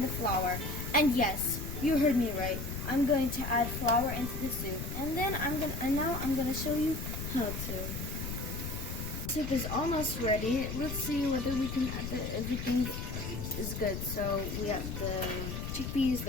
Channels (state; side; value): noise; left; rumble, 5 dB below the sound